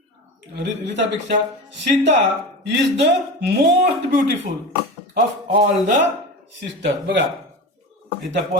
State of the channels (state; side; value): normal; both; correlation 0.28